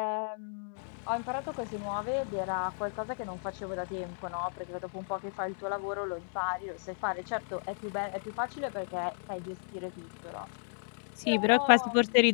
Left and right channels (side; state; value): right; silent; digital silence